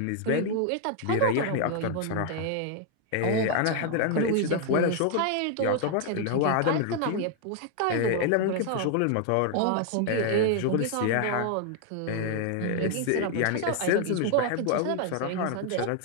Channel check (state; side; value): different; both; correlation 0.00